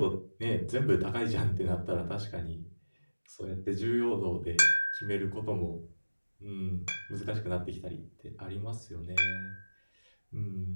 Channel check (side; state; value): both; inverted; correlation -1.00